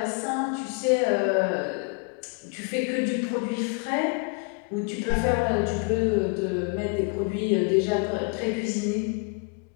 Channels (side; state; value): right; quieter; 34.7 dB